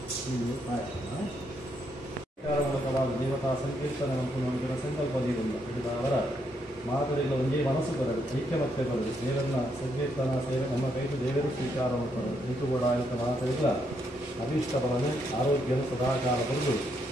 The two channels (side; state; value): both; normal; correlation 0.76